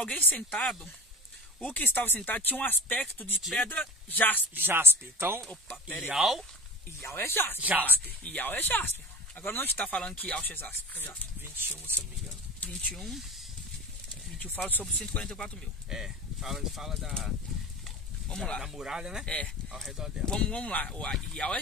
sentado. O que estava sentado tinha um aspecto de pedra jaspe. Então, Ial é jaspe. Ial é jaspe. Agora não está falando que Iaush é jaspe. 21, se eu não me engano. 21 fala sobre 144 mil. Fala Vamos lá. Da muralha, né? Ao redor dela. Vamos lá. O Ial é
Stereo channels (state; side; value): normal; both; correlation 0.33